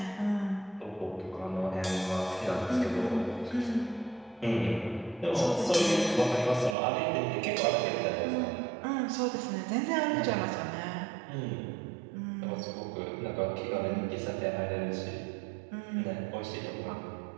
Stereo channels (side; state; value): left; drops out; at 6.8 s